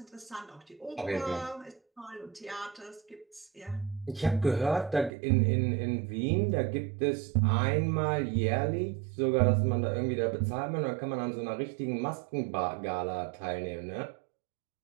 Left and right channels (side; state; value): left; drops out; at 5.1 s